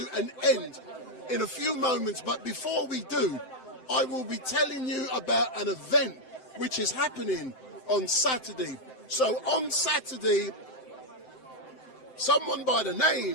an end in a few moments, but before we do, I will be telling you about an event which is happening on Saturday. So on Saturday, someone by the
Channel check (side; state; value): right; late; 7.8 ms